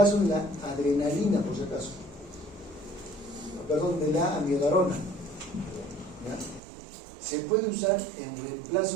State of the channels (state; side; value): drops out; left; at 6.6 s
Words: de la adrenalina, por si acaso. Perdón, de la amiodarona. ¿Ya? Se puede usar en